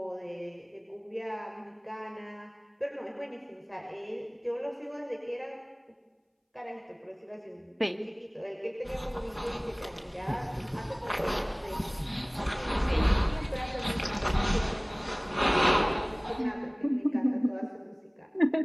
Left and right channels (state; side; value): identical; both; correlation 1.00